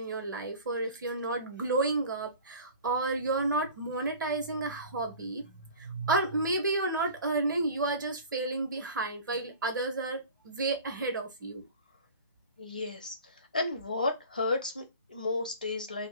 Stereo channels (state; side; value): inverted; both; correlation -0.41